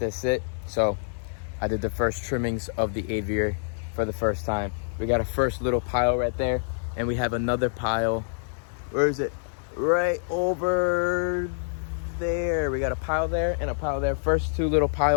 sit, so I did the first trimmings of the aviary for the first time. We got a first little pile right there, and we have another pile. Where is it? Right over there. We got a pile there and a pile there. First two little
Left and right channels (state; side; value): silent; right; digital silence